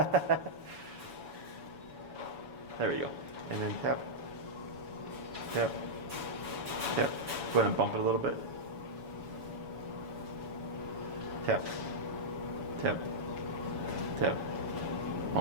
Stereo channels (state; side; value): late; left; 7.1 ms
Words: we go. And then tap. Tap. Tap. Go ahead and bump it a little bit. Tap. Tap. Tap.